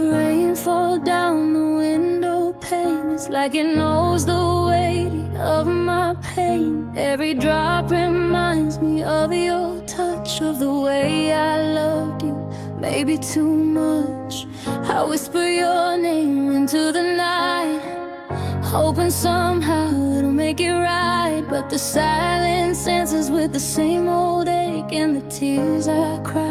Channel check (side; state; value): both; identical; correlation 1.00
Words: rain fall down the window pane. It's like it knows the weight of my pain. Every drop reminds me of your touch, of the way I loved you, maybe too much. I whisper your name into the night, hoping somehow it'll make it right. But the silence answers with the same old ache, and the tears I